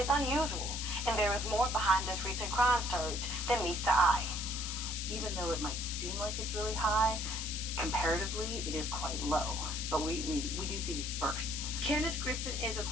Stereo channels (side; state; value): left; noise; hiss, 4 dB below the sound